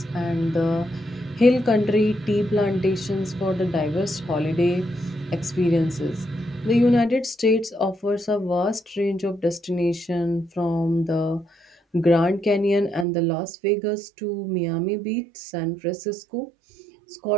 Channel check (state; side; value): drops out; left; at 13.1 s